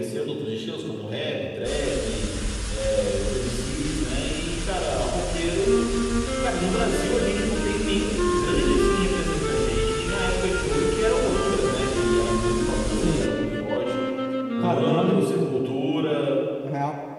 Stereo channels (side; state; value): both; identical; correlation 1.00